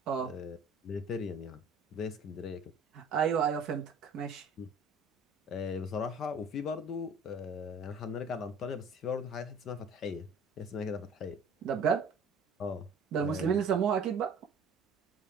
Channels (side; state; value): left; quieter; 3.2 dB